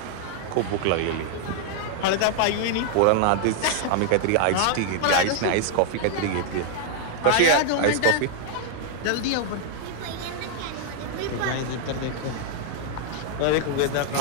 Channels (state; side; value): different; both; correlation 0.00